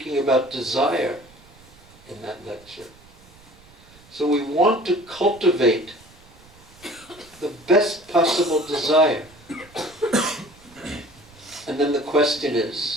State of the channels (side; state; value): right; noise; rumble, 25 dB below the sound